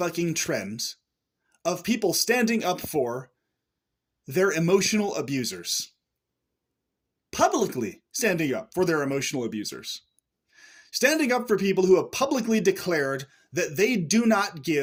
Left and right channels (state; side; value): identical; both; correlation 1.00